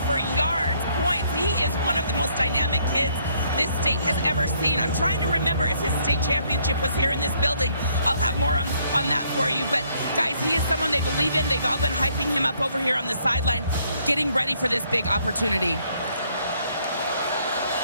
for yards, points. He is one of the most dynamic kids this state has ever seen. I'm trying to remember if his state championship was here in this building. I'll have more on that for you. But guys, he is someone they believe in. They've all been hyping him up over here on the sideline, getting ready for this big opportunity.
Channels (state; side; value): inverted; both; correlation -0.68